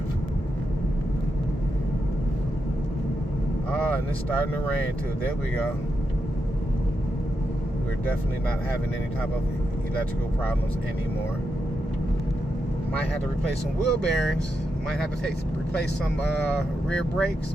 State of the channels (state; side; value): normal; both; correlation 0.85